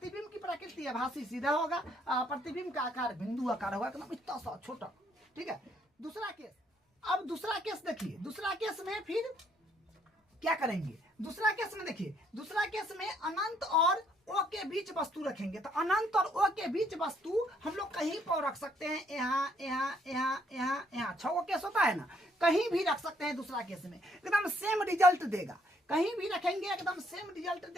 की प्रकृति आभासी सीधा होगा, प्रतिबिंब का आकार बिंदु आकार होगा, मतलब इतना सा छोटा, ठीक है। दूसरा केस, अब दूसरा केस देखिए, दूसरा केस में फिर क्या करेंगे, दूसरा केस में देखिए, दूसरा केस में अनंत और ओ के बीच वस्तु रखेंगे। तो अनंत और ओ के बीच वस्तु हम लोग कहीं पर रख सकते हैं, यहाँ यहाँ यहाँ यहाँ यहाँ, 6 केस होता है ना, कहीं भी रख सकते हैं। दूसरा केस में एकदम सेम रिजल्ट देगा, कहीं भी रखेंगे एकदम सेम रिजल्ट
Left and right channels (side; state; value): both; normal; correlation 0.68